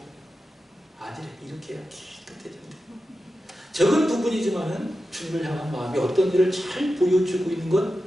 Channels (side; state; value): both; normal; correlation 0.91